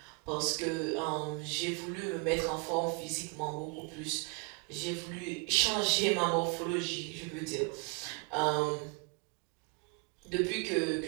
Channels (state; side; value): quieter; left; 33.6 dB